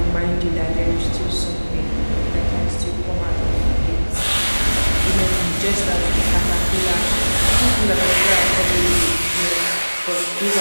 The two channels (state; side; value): inverted; both; correlation -1.00